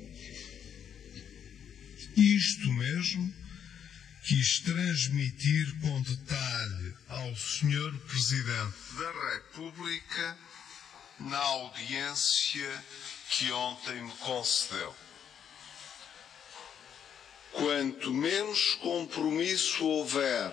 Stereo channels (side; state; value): right; quieter; 8.5 dB